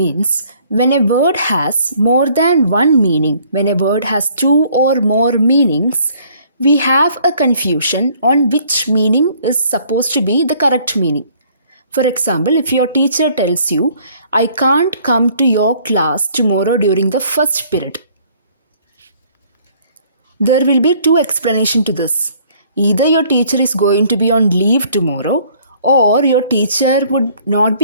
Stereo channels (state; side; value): inverted; both; correlation -0.60